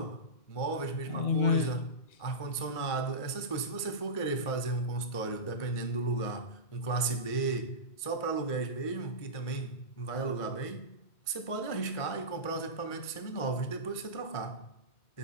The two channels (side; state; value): right; late; 1.5 ms